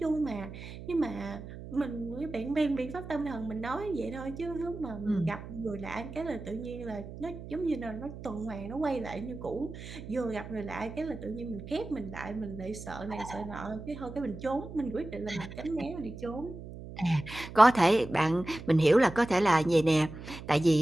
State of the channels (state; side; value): noise; right; hum, 12 dB below the sound